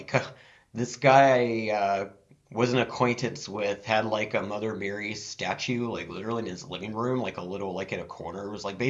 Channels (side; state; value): both; identical; correlation 1.00